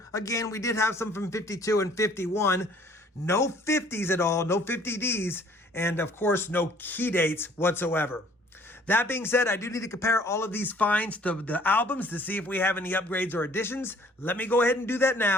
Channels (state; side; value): normal; both; correlation 0.56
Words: Again, we did have some from 52 and 51. No 50s at all, no 50Ds, and of course, no key dates whatsoever. That being said, I do need to compare all of these finds to the albums to see if we have any upgrades or additions. Let me go ahead and do that